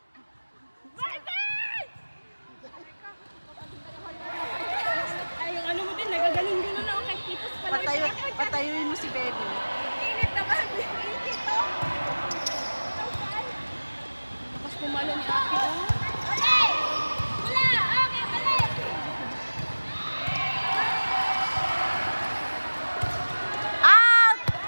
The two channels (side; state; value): both; inverted; correlation -1.00